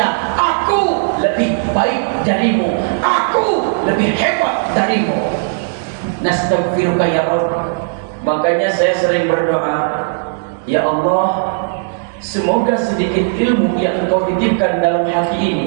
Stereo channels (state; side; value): silent; left; 64 dB below the other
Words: aku lebih baik darimu, aku lebih hebat darimu. Nastaghfiruka ya Rabb. Makanya saya sering berdoa, ya Allah, semoga sedikit ilmu yang Engkau titipkan dalam hati ini